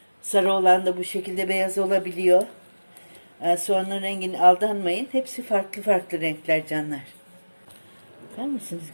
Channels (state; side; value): inverted; both; correlation -1.00